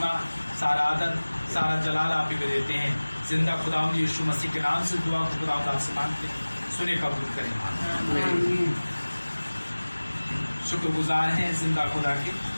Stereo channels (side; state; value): both; inverted; correlation -1.00